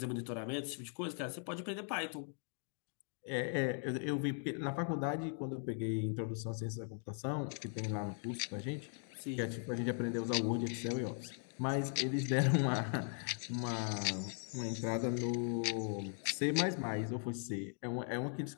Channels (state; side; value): silent; right; 52 dB below the other